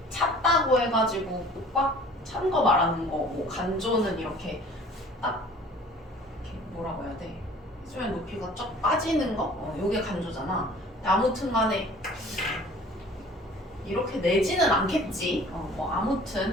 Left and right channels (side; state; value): both; normal; correlation 0.49